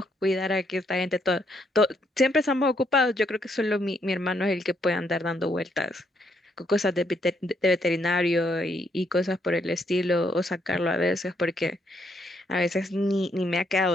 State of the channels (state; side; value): normal; both; correlation 0.74